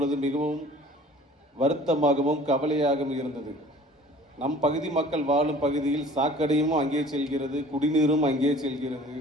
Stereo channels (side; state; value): both; normal; correlation 0.48